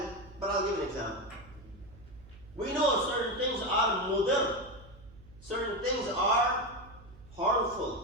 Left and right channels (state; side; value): noise; right; hum, 21 dB below the sound